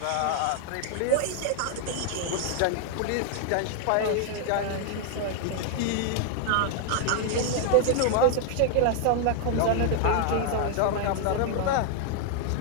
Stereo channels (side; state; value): both; different; correlation 0.00